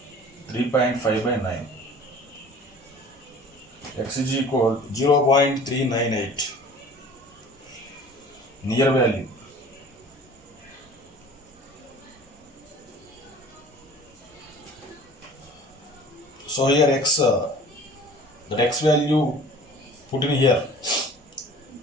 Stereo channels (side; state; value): both; normal; correlation 0.46